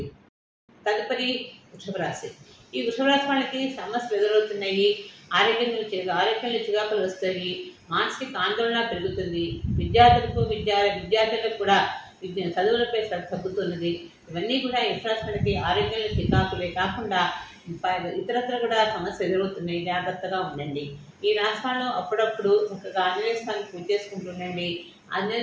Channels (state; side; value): identical; both; correlation 1.00